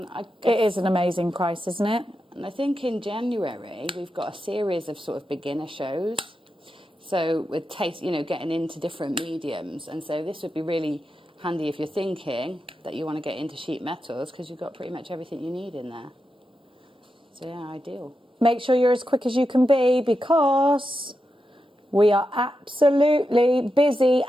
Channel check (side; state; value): both; normal; correlation 0.88